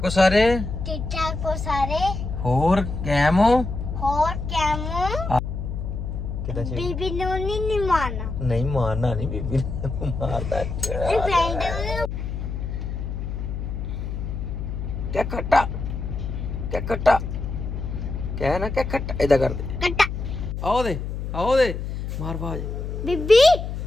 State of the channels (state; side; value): noise; left; hum, 5 dB below the sound